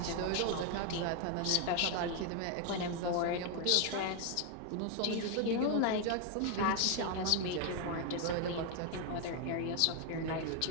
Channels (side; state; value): both; different; correlation 0.01